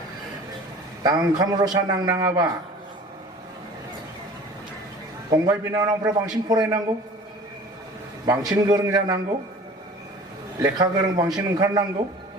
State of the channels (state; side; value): normal; both; correlation 0.44